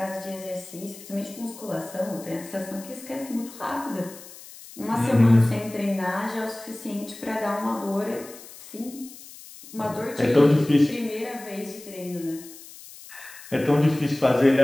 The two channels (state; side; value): noise; left; hiss, 17 dB below the sound